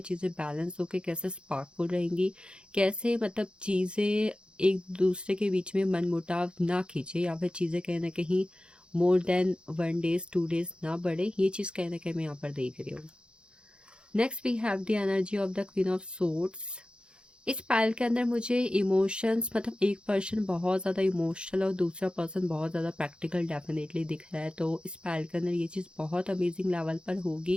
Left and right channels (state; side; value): late; left; 0.054 ms